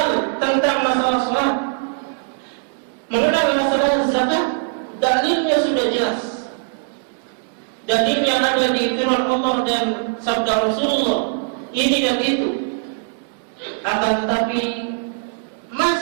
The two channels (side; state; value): left; silent; 65 dB below the other